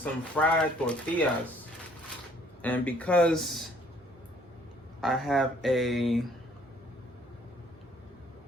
fried tortillas. And because I have a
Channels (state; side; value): normal; both; correlation 0.60